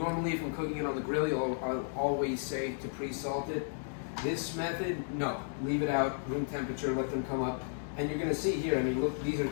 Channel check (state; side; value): silent; right; digital silence